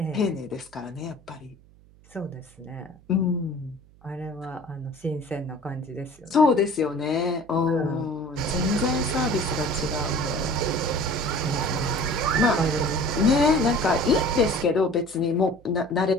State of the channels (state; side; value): noise; right; hum, 27 dB below the sound